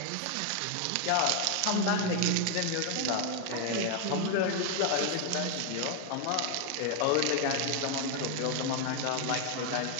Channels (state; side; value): different; both; correlation 0.01